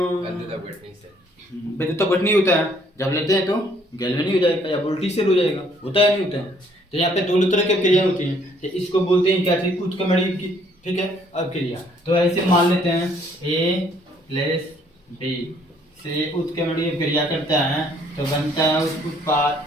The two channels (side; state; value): both; normal; correlation 0.63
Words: विद्युत अपघटनी होता है, जब लेते हैं तो गैल्वेनी हो जाएगा या वोल्टी सेल हो जाएगा, होता है नहीं होता है। तो यहाँ पे दोनों तरह की क्रिया होती हैं, तो इसको बोलते हैं क्या चीज, उत्क्रमणीय की, ठीक है, अभिक्रिया। तो ऐसे मान लेते हैं ए प्लस बी से उत्क्रमणीय क्रिया करता है तो बनता है